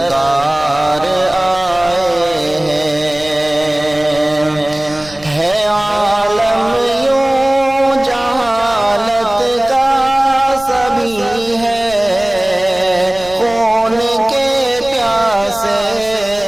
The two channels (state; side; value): noise; right; rumble, 20 dB below the sound